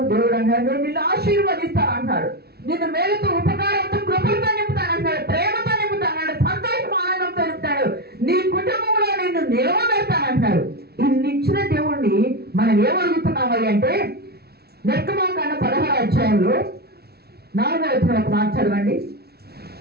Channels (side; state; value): left; late; 0.46 ms